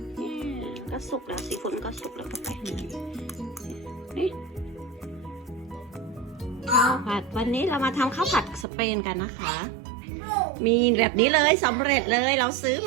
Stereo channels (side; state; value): left; drops out; at 8.7 s